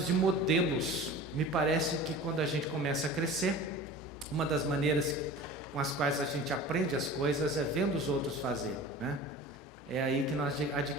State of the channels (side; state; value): both; normal; correlation 0.38